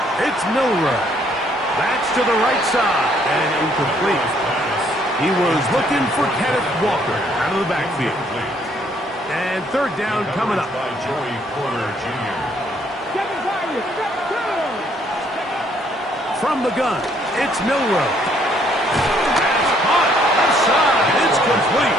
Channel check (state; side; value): normal; both; correlation 0.66